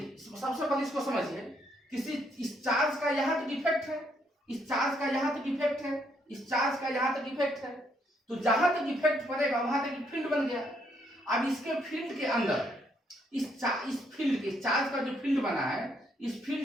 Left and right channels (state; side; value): normal; both; correlation 0.72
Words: सबसे पहले इसको समझिए, किसी इस चार्ज का यहां तक इफेक्ट है, इस चार्ज का यहां तक इफेक्ट है, इस चार्ज का यहां तक इफेक्ट है। तो जहां तक इफेक्ट पड़ेगा वहां तक फील्ड बन गया। अब इसके फील्ड के अंदर, इस फील्ड के चार्ज का जो फील्ड बना है, इस